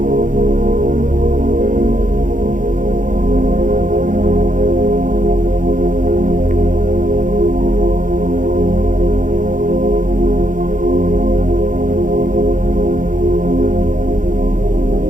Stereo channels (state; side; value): late; left; 0.38 ms